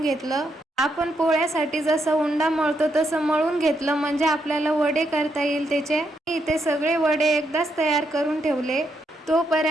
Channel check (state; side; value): normal; both; correlation 0.79